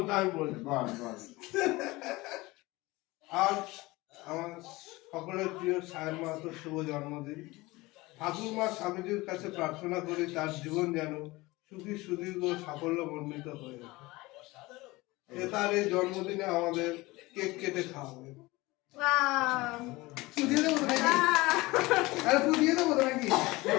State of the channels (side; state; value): right; quieter; 21.2 dB